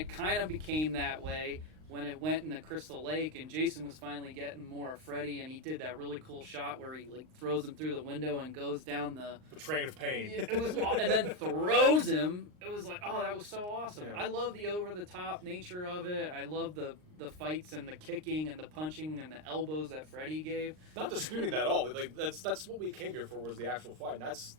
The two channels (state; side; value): late; left; 39 ms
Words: kind of became that way when it went in the Crystal Lake and Jason was finally getting more of Freddy and he did that really cool shot where he like throws him through the window and goes down the train of pain. it was and then throws him. It was like, oh, that was so awesome. Yeah. I love the over the top nature of it. I love the fights and the kicking and the punching and the elbows that Freddy gave. Not disputing that at all. Like that's what we came here for was the actual fight. And